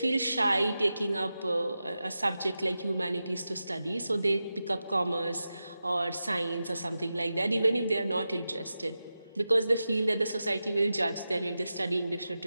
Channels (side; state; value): both; inverted; correlation -0.91